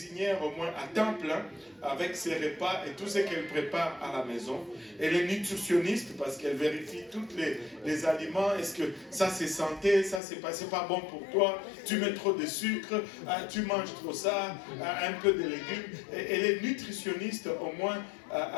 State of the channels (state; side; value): drops out; right; at 10.2 s